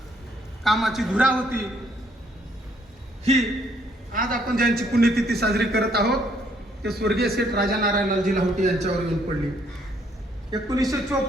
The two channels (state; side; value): normal; both; correlation 0.68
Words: कामाची धुरा होती, ही आज आपण ज्यांची पुण्यतिथी साजरी करत आहोत ते स्वर्गीय सेठ राजा नारायण लालजी लाहोटी यांच्यावर येऊन पडली.